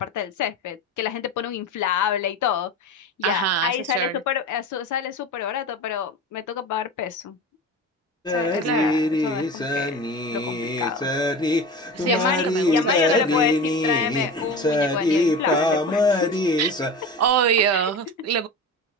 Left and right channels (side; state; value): both; normal; correlation 0.30